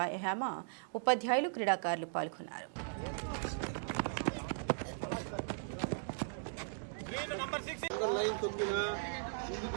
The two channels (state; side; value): silent; left; digital silence